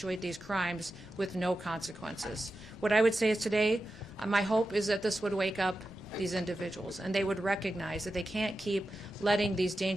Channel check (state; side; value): normal; both; correlation 0.91